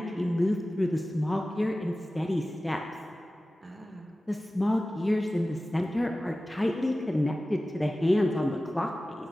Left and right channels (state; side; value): normal; both; correlation 0.96